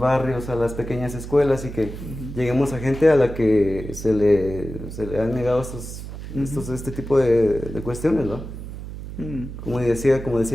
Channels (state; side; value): noise; right; hum, 10 dB below the sound